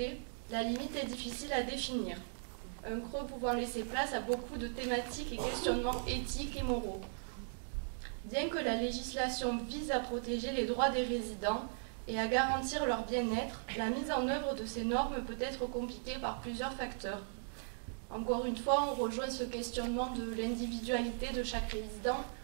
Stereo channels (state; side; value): silent; left; digital silence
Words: la limite est difficile à définir, un creux pouvant laisser place à beaucoup de thématiques et questionnements éthiques et moraux. Bien que la législation vise à protéger les droits des résidents et à garantir leur bien-être, la mise en œuvre de ces normes peut être compliquée par plusieurs facteurs. Encore une fois, on rejoint ce questionnement de l'individualité de chaque résident,